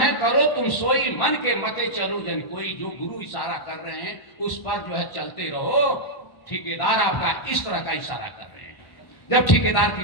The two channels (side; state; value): right; late; 1.1 ms